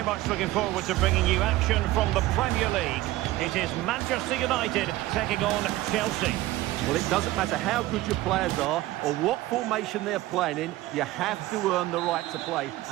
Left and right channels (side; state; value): left; quieter; 16.9 dB